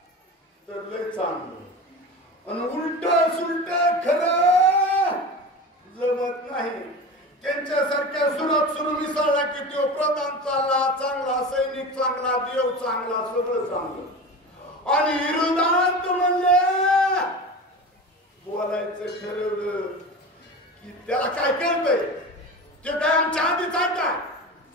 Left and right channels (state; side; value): normal; both; correlation 0.30